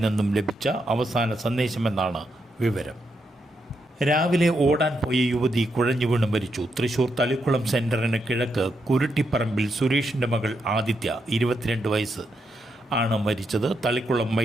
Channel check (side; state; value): both; normal; correlation 0.81